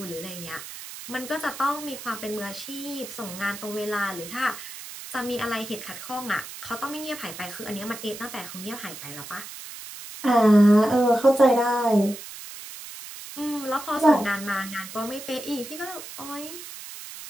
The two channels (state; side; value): noise; right; hiss, 12 dB below the sound